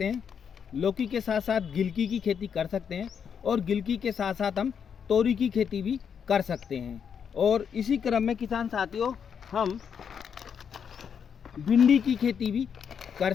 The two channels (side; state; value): right; quieter; 7.3 dB